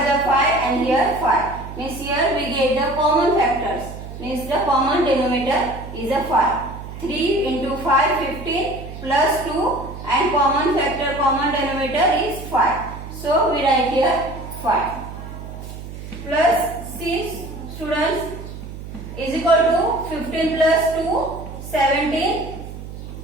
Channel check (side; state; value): right; noise; hum, 11 dB below the sound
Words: is 5 and here 5. Means here we get the common factors. Means the common denominator is a 5. 3 into 5 15 plus 2 and common factor common denominator is 5. So we write here 5 plus 6 students is equal to 15 plus 2 17